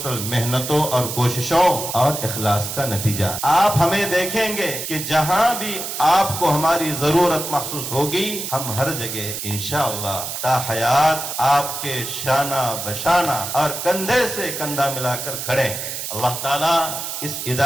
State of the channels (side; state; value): right; noise; hiss, 5 dB below the sound